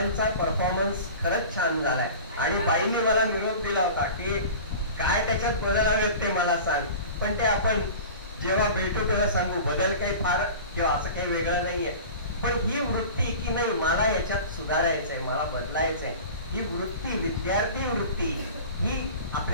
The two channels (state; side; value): inverted; both; correlation -0.37